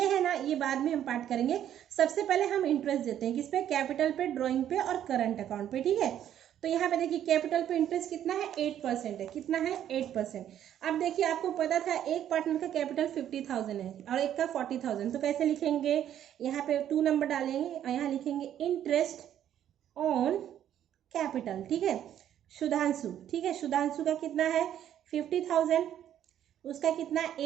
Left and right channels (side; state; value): left; quieter; 10.7 dB